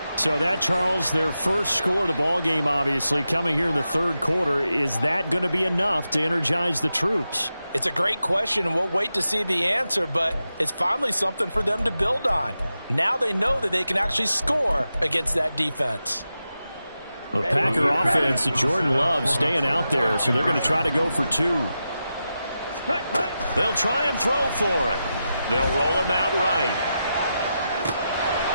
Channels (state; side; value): inverted; both; correlation -0.90